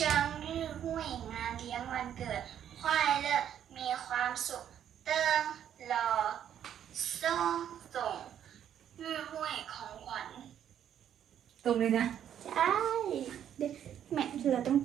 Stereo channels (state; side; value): quieter; left; 9.8 dB